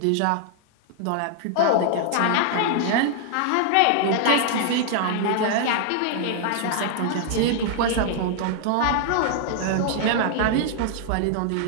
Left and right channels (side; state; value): both; different; correlation -0.01